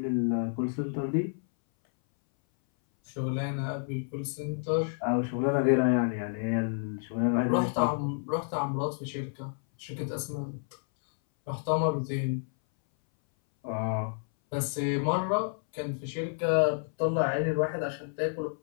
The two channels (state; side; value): silent; right; 58 dB below the other